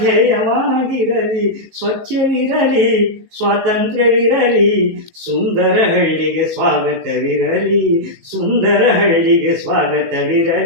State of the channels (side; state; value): left; late; 18 ms